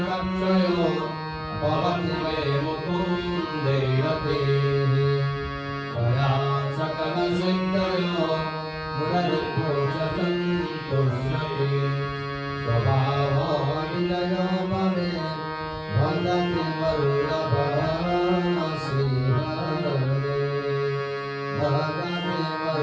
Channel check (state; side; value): identical; both; correlation 1.00